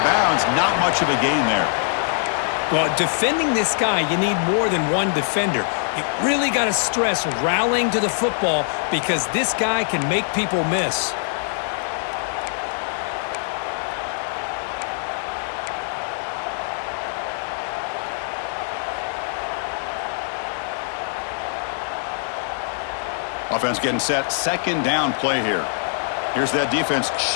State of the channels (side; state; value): right; silent; 64 dB below the other